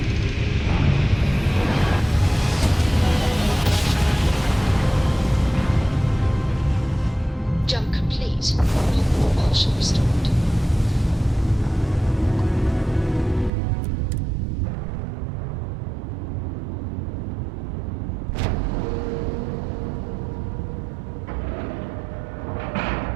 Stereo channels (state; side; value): drops out; left; at 13.5 s